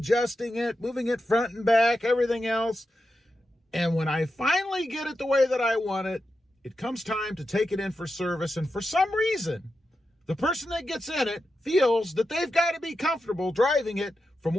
it, moving it front and back, everything else. And when I finally get it the way that I want it, it comes time to take it in for service. And for some reason, the person that gets in it feels that they've got to be comfortable driving it from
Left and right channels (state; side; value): normal; both; correlation 0.89